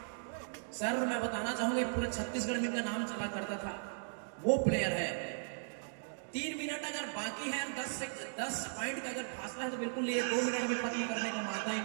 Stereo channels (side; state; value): left; silent; digital silence